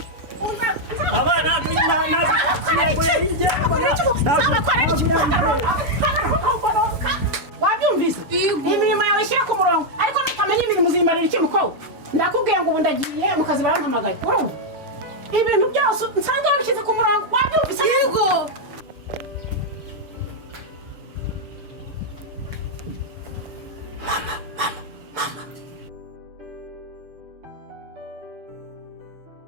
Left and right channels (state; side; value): late; left; 6.9 ms